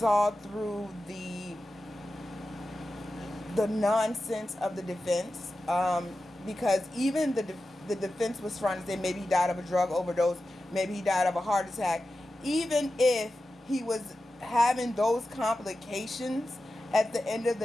through the nonsense of the defense, because even the defense was trying to say maybe he died of a drug overdose, maybe he died of a heart attack. Even if he was having those complications, at the end of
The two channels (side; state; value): both; normal; correlation 0.92